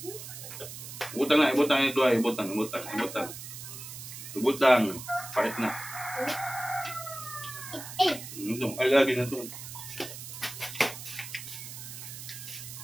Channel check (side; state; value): right; noise; hiss, 11 dB below the sound